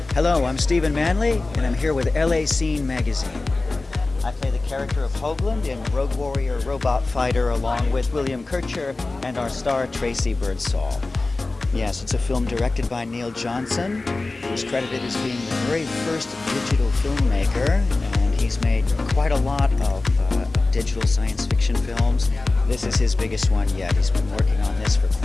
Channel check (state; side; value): quieter; right; 3.3 dB